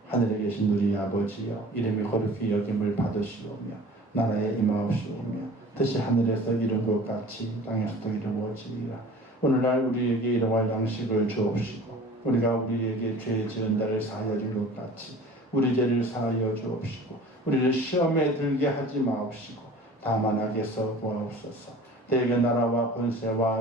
하늘에 계신 우리 아버지여, 이름이 거룩히 여김을 받으시오며 나라에 임하옵시오며 뜻이 하늘에서 이룬 것 같이 땅에서도 이루어지리라. 오늘날 우리에게 일용할 양식을 주옵시고 우리가 우리에게 죄 지은 자를 사하여 줄 것 같이 우리 죄를 사하여 주옵시고 우리를 시험에 들게 하지 마옵시고 다만 악에서 구하옵소서. 대개 나라와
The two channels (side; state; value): both; normal; correlation 0.44